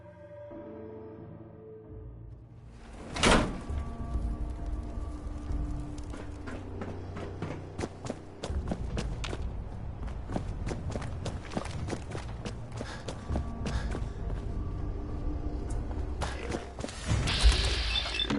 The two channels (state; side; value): identical; both; correlation 1.00